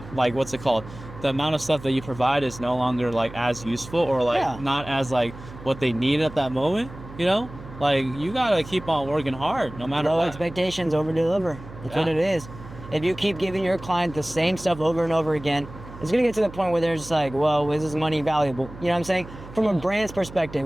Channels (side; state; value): right; noise; hum, 16 dB below the sound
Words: like, what's it called? The amount of stuff that you provide is no longer, like, as useful or, like, Yeah. not as, like, what they need at that moment, you know? Like, you gotta keep on working hard no matter Low what. expectations, over deliver. That's what Yeah. it is. If you keep giving your client the same stuff over and over again, it's gonna get to the point where they're just like, well, is this money valuable? You know what I'm saying? From a brand's perspective,